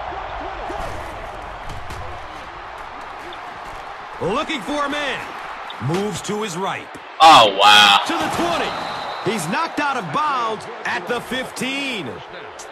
Looking for a man. Moves to his right. Oh, wow. To the 20. He's knocked out of bounds at the 15.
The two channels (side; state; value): both; identical; correlation 1.00